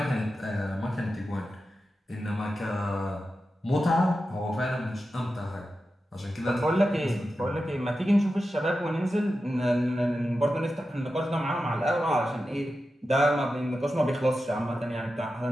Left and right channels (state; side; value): normal; both; correlation 0.91